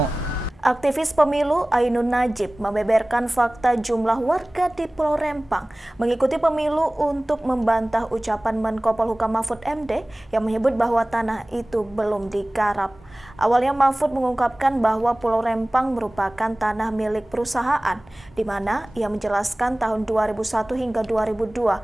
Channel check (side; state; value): both; normal; correlation 0.98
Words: Aktivis pemilu Ainun Najib membeberkan fakta jumlah warga di Pulau Rempang mengikuti pemilu untuk membantah ucapan Menko Polhukam Mahfud MD yang menyebut bahwa tanah itu belum digarap. Awalnya Mahfud mengungkapkan bahwa Pulau Rempang merupakan tanah milik perusahaan, di mana ia menjelaskan tahun 2001 hingga